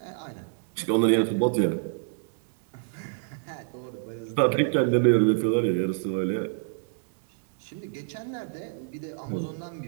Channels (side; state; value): left; silent; digital silence